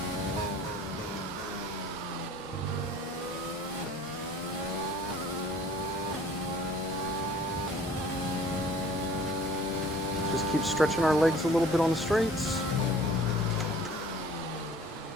Just keep stretching our legs a little bit on the straights.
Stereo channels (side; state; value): both; normal; correlation 0.50